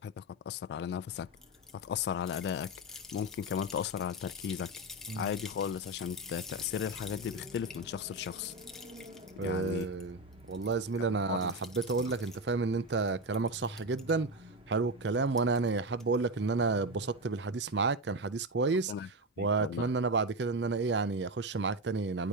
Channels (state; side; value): normal; both; correlation 0.15